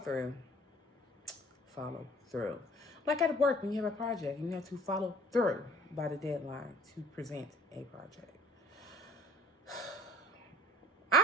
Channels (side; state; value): both; normal; correlation 0.50